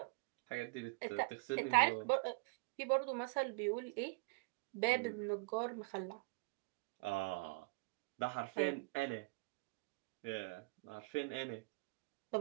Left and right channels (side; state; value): left; quieter; 30.0 dB